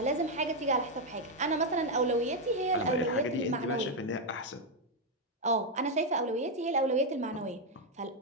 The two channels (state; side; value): normal; both; correlation 0.02